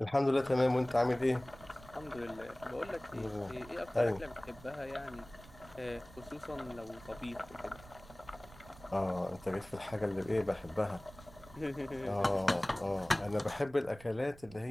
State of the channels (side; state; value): right; noise; rumble, 20 dB below the sound